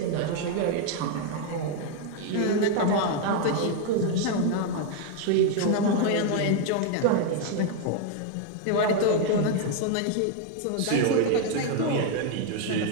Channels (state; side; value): different; both; correlation 0.01